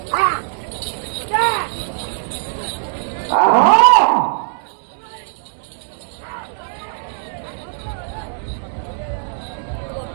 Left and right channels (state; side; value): silent; left; digital silence